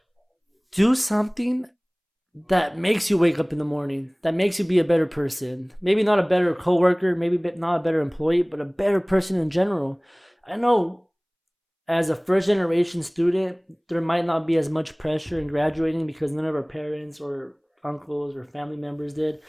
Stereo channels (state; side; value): identical; both; correlation 1.00